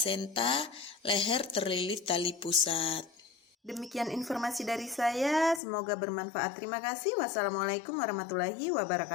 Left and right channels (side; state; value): right; drops out; at 5.6 s